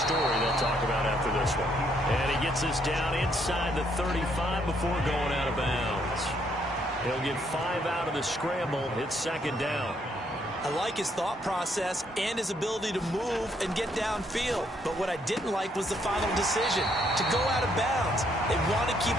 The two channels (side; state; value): both; normal; correlation 0.71